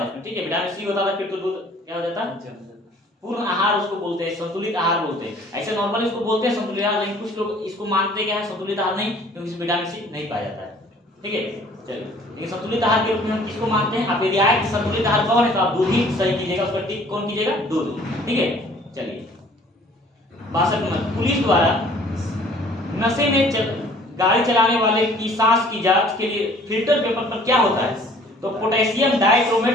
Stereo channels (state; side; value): normal; both; correlation 0.54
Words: उसमें। ठीक है, विटामिन सी होता था फिर तो दूध क्या हो जाता? पूर्ण आहार उसको बोलते हैं, संतुलित आहार बोलते हैं। ऐसे नॉर्मली इसको बोलते हैं संतुलित आहार, लेकिन कुछ लोग इसको मानते क्या है? संतुलित आहार नहीं, क्योंकि इसमें विटामिन सी नहीं पाया जाता है। ठीक है, चलिए, लेकिन संतुलित आहार के रूप में हम किसको मानते हैं? आप यदि आए कि संतुलित आहार कौन है, तो आप दूध ही सही कीजिएगा, उसका टिक कौन कीजिएगा? दूध। ठीक है, चलिए 62 नंबर, पुलिस द्वारा नशे में गाड़ी चलाने वाले की सांस की जांच के लिए फिल्टर पेपर पर क्या होता है? तो potassium